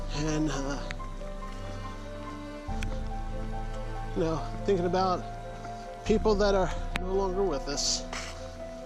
and you know, thinking about people that are no longer with us.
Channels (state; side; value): identical; both; correlation 1.00